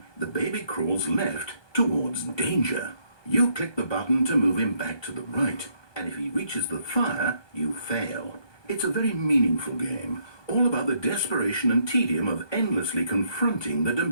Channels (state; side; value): late; right; 1.2 ms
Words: the baby crawls left towards danger. You click the button to move him back to the right, and if he reaches the fire, you fail. It's a very meaningful game, all about the desperation and tedium of endlessly confronting the